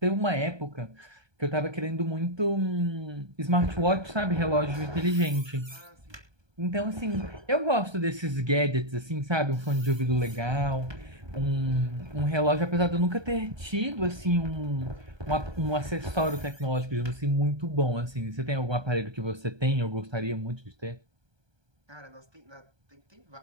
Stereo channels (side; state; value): left; late; 1.2 ms